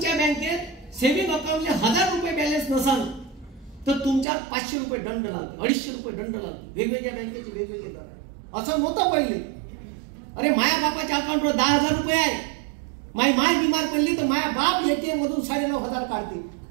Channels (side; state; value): left; drops out; at 4.2 s